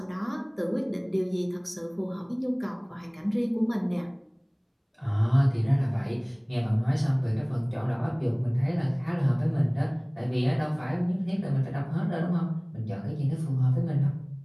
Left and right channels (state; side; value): identical; both; correlation 1.00